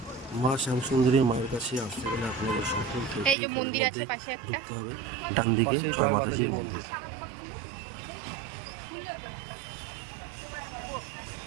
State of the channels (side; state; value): left; drops out; at 3.4 s